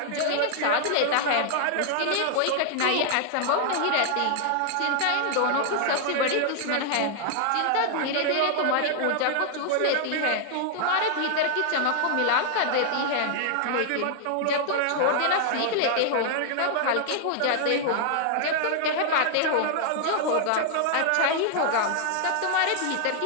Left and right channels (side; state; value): both; different; correlation -0.01